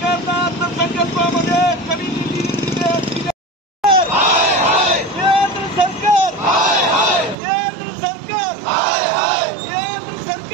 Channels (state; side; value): drops out; left; at 7.4 s